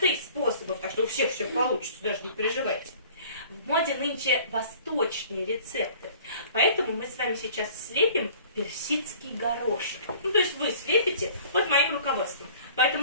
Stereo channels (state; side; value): inverted; both; correlation -0.49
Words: способов, так что у всех все получится, даже не переживайте. В моде нынче восточные рецепты, поэтому мы с вами сейчас слепим персидский горошек. То есть вы слепите под моим руководством.